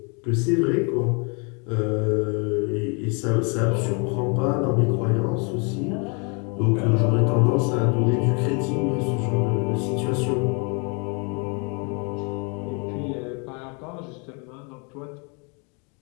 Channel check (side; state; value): right; quieter; 34.2 dB